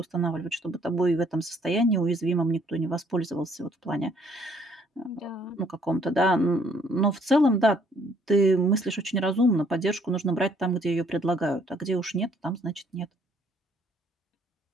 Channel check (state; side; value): normal; both; correlation 0.64